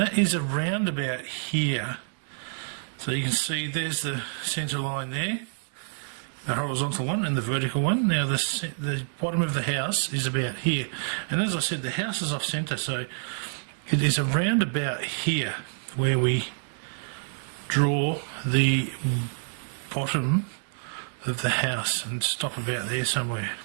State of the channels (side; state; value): left; silent; digital silence